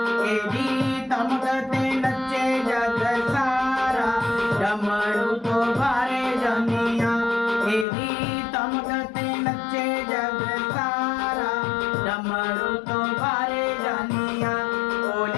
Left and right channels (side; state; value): right; drops out; at 7.9 s